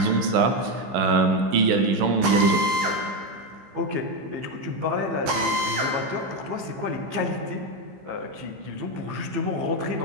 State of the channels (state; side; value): late; left; 15 ms